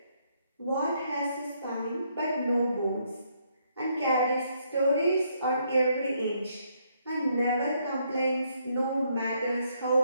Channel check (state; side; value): inverted; both; correlation -0.72